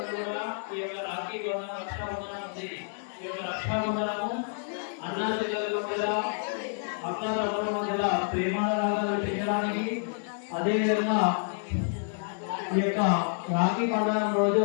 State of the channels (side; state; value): right; silent; digital silence